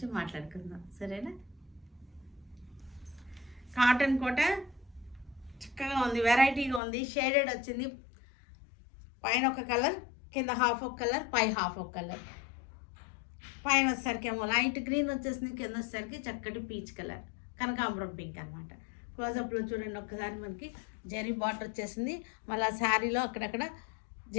మాట్లాడుకుందాం, సరేనా? కాటన్ కోట చక్కగా ఉంది, వెరైటీగా ఉంది. షేడెడ్ వచ్చింది, పైన ఒక కలర్, కింద హాఫ్ ఒక కలర్, పై హాఫ్ ఒక కలర్. పైన వచ్చేసరికి ఏమో లైట్ గ్రీన్ వచ్చేసింది, కింద వచ్చేసరికి చక్కటి పీచ్ కలర్, కనకాంబరం పింక్ అనమాట. క్లోజప్లో చూడండి ఒక్కసారి, మనకి జెరీ బార్డర్ వచ్చేసింది. మళ్ళీ శారీలో అక్కడక్కడ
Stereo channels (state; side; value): drops out; right; at 6.8 s